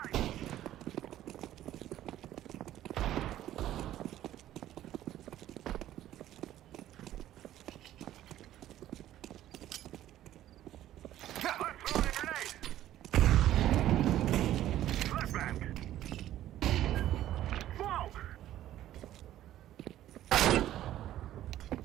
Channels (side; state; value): left; quieter; 13.0 dB